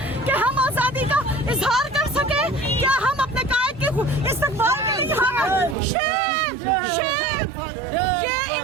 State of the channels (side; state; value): left; drops out; at 5.8 s